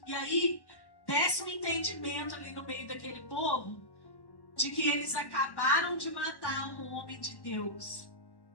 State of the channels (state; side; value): late; right; 1.1 ms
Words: E aí desce um entendimento ali no meio daquele povo de que eles acabaram de matar um homem de Deus.